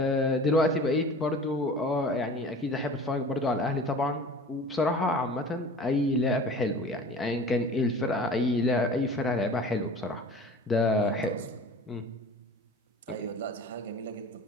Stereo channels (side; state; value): both; normal; correlation 0.41